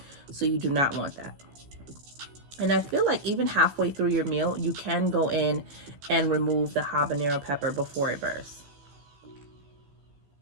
So you do not want that. And I feel like even halfway through your meal, you can go in and remove the habanero pepper before it bursts.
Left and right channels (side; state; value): left; late; 15 ms